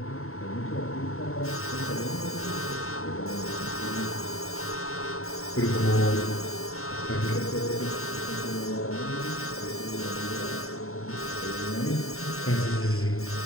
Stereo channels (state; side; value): late; right; 0.63 ms